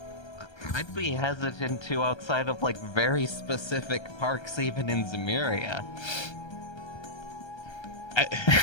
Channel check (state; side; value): late; right; 1.3 ms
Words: I'd be hesitant to outside of like very specific parks, even in Zemuria. I